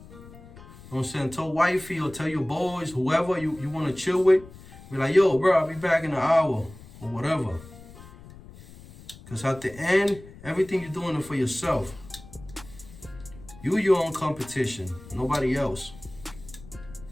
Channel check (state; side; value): noise; left; rumble, 19 dB below the sound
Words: You know what I'm saying? Tell wifey or tell your boys, whoever you want to chill with, be like, yo, bro, I'll be back in an hour or whatever. Because at the end, everything you're doing it for yourself. You your own competition, nobody else.